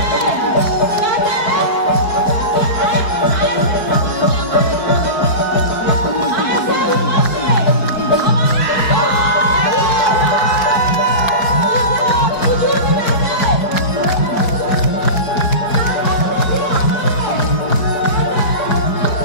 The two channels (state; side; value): late; right; 4.6 ms